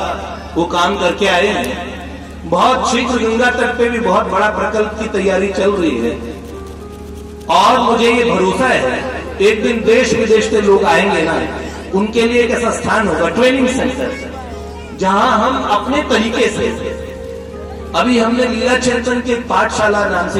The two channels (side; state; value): both; identical; correlation 1.00